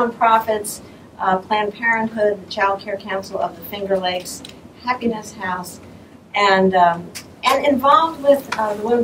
Planned Parenthood, the Child Care Council of the Finger Lakes, Happiness House, and involved with the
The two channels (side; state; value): both; identical; correlation 1.00